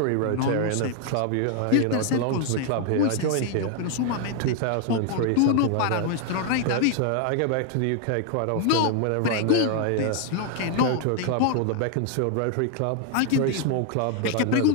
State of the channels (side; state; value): both; different; correlation 0.00